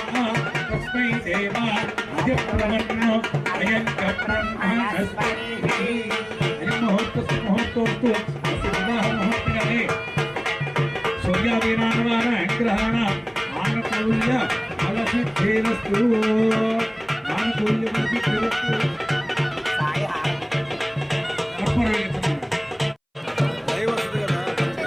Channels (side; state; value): both; identical; correlation 1.00